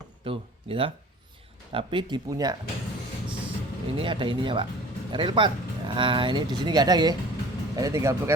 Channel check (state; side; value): normal; both; correlation 0.45